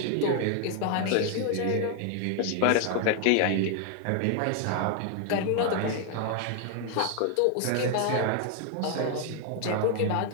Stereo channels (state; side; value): different; both; correlation 0.00